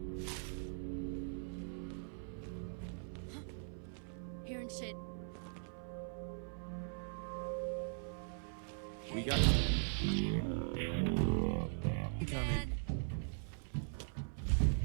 Hearing shit. We got coming.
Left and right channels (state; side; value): silent; left; 51 dB below the other